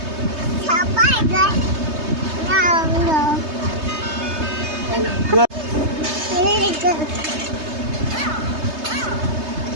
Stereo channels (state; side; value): late; left; 3.2 ms